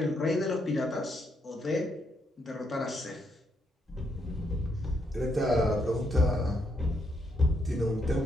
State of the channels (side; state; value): both; normal; correlation 0.77